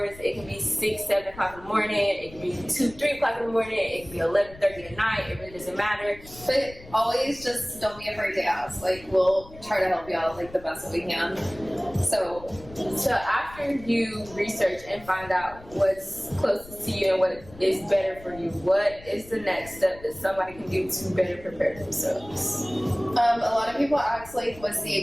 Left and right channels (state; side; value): noise; left; rumble, 19 dB below the sound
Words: It can be 6, 7 o'clock in the morning. It can be 2, 3 o'clock in the morning. It can be 11:30 at night. It really doesn't matter. But always just don't be afraid to ask. Like, we'll try to help you out like the best that we can. So So after you research and find out what's closest to you and what is better for you, what is the next step that somebody can do to better prepare themselves? a lot of people ask like, what's